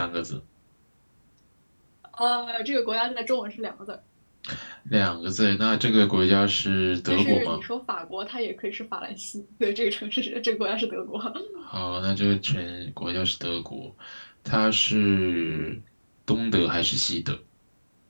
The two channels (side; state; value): both; inverted; correlation -1.00